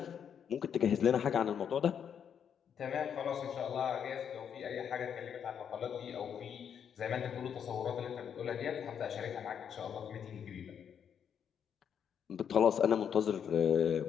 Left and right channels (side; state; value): right; quieter; 8.1 dB